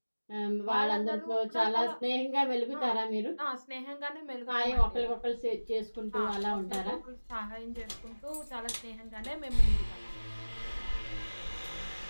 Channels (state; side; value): inverted; both; correlation -1.00